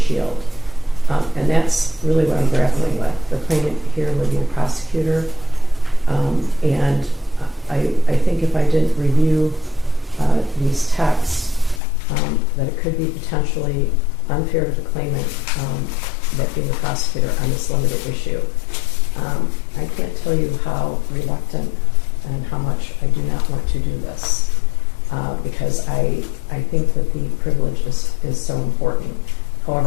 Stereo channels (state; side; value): drops out; right; at 11.8 s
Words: And that's really what I'm grappling with. The claimant here would be the prosecutor, and I think if I didn't review these texts, that it could be potentially unfair to the claimant, that being the prosecutor on this limited issue. I can't tell you how reluctant and how much I do not want to do this, because I think that the privilege is so important.